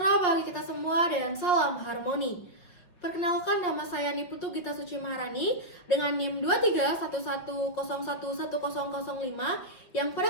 bagi kita semua dan salam harmoni. Perkenalkan, nama saya Niputu Gita Suci Maharani dengan NIM 2311011005 yang pada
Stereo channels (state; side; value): late; right; 5.8 ms